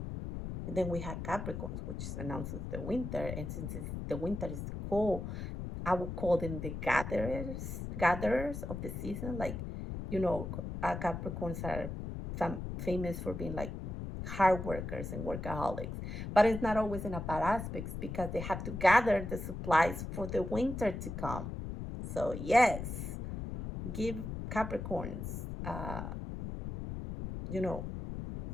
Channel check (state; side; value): noise; left; rumble, 6 dB below the sound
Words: And then we have Capricorns, which announces the winter. And since the winter is cold, I would call them the gatherers of the season. Like, Capricorns are famous for being like hard workers and workaholics. But it's not always in a bad aspects because they have to gather the supplies for the winter to come. So yes, give Capricorns, you know,